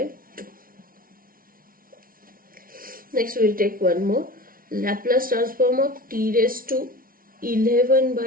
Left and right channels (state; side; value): late; left; 0.42 ms